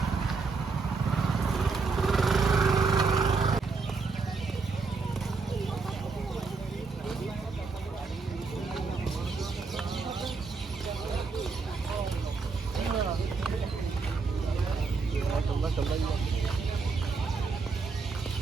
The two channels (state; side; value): quieter; left; 4.5 dB